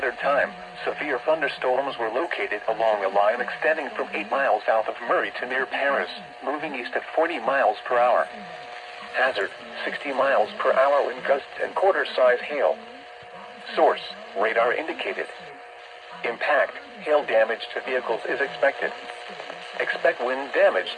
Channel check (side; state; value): both; identical; correlation 1.00